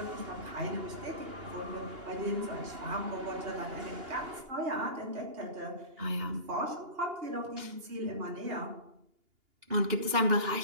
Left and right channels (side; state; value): left; late; 2.8 ms